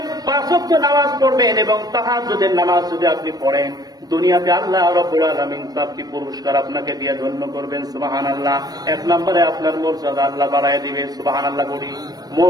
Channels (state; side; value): late; left; 0.19 ms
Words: 5 ওয়াক্ত নামাজ পড়বেন এবং তাহাজ্জুদের নামাজ যদি আপনি পড়েন, দুনিয়াতে আল্লাহ রাব্বুল আলামিন 4টি পুরস্কার আপনাকে দিয়ে ধন্য করবেন। সুবহানাল্লাহ। 1 নম্বরে আপনার মর্যাদা আল্লাহ বাড়ায় দিবে। সুবহানাল্লাহ বলি,